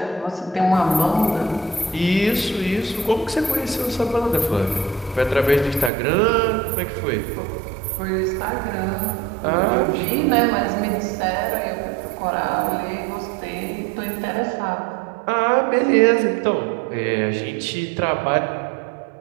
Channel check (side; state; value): left; drops out; at 5.9 s